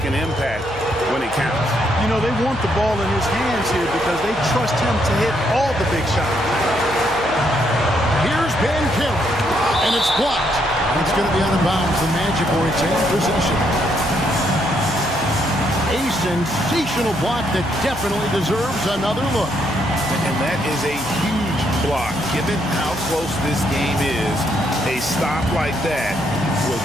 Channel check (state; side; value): noise; left; hum, 17 dB below the sound